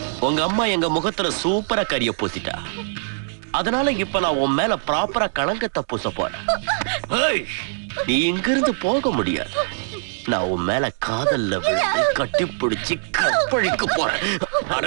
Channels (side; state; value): left; silent; digital silence